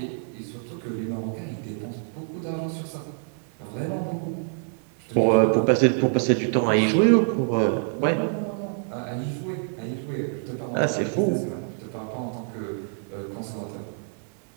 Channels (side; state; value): left; silent; 59 dB below the other